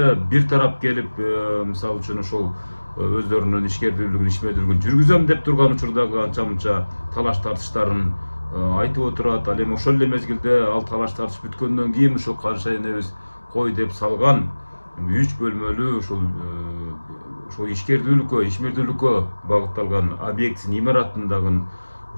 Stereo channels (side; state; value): both; inverted; correlation -1.00